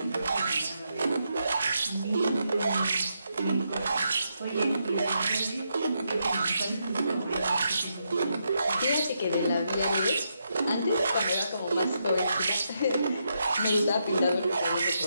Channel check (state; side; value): inverted; both; correlation -0.81